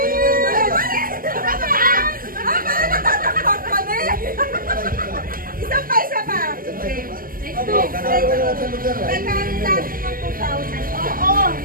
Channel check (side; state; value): left; late; 0.41 ms